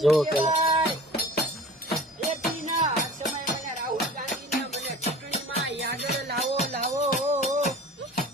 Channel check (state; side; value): normal; both; correlation 0.41